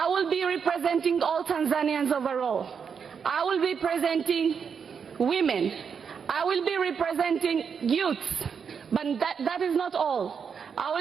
will be representing all Tanzanians overall. I will be representing women. I will be representing youths. But that is not all. I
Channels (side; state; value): left; quieter; 6.6 dB